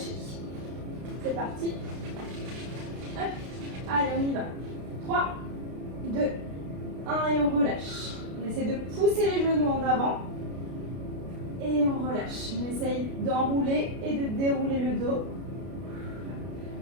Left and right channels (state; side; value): late; left; 32 ms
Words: C'est parti. Hop. Allez, on y va. 3, 2, 1 et on relâche. On essaie de pousser les genoux en avant. Et on relâche. On essaye d'enrouler et de dérouler le dos.